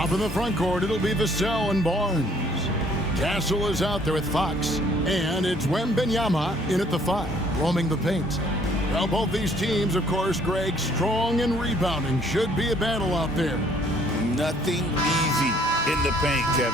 in the front court, it'll be Vassell and Barnes. Castle is out there with Fox. And it's Wembanyama in at the 5, roaming the paint. Well, both these teams, of course, Greg, strong and rebounding. Should be a battle out there. Nothing easy in the paint,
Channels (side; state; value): both; normal; correlation 0.61